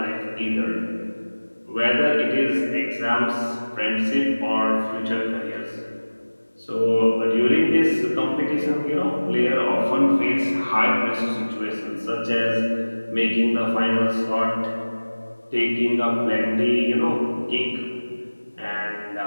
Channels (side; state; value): both; inverted; correlation -1.00